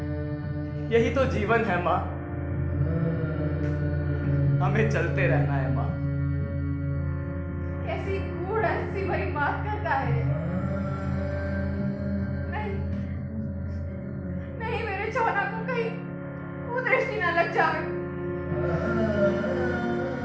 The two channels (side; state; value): both; identical; correlation 1.00